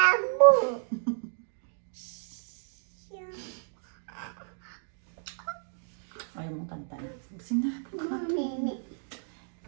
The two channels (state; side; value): silent; left; digital silence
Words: Ayaw mong tantanan. Busing na. Mami.